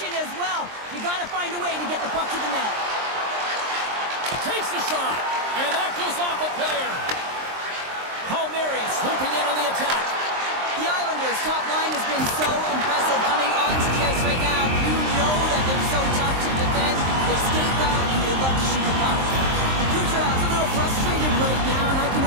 as well. You got to find a way to get the puck to the net. Takes a shot, and that goes off a player. Palmieri swooping in on the attack. The Islanders' top line has been so impressive coming onto the ice right now. You know that they're so tough to defend. They skate well, and they love to shoot the puck. Kucherov's a little frustrated right now, and I can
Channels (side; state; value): left; late; 23 ms